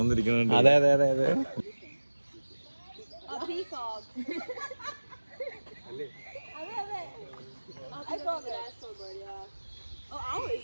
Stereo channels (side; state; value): both; inverted; correlation -1.00